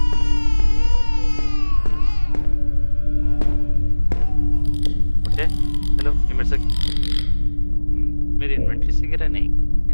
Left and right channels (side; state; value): both; inverted; correlation -1.00